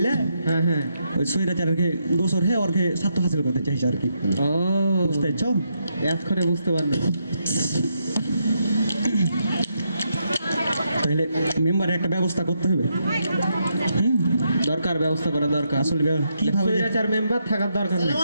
হ্যাঁ হ্যাঁ। ওই স্বৈরাচারকে দোষর হ্যাঁ ওরকে স্বার্থ হাসিল করতে চাইছে আর কি, ও বুঝতে পারছো? এতক্ষণে বুঝতে পারলো। তাহলে মেম্বারের একটা ব্যবস্থা করতে হবে। দরকার, ব্যবস্থা করা দরকার। আসলে কিভাবে যে- স্বৈরাচার মেম্বার থাকার দরকার নেই। আসসালামু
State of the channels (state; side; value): inverted; both; correlation -0.80